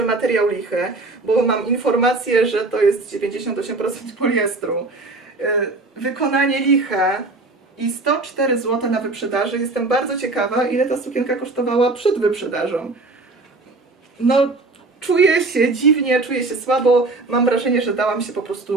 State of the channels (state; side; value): quieter; left; 3.3 dB